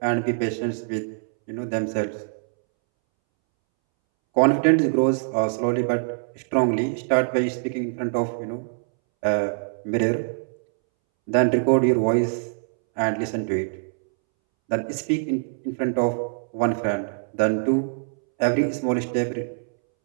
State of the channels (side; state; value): left; silent; 63 dB below the other